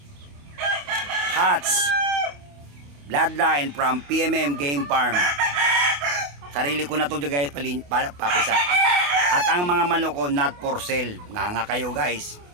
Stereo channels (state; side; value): late; left; 28 ms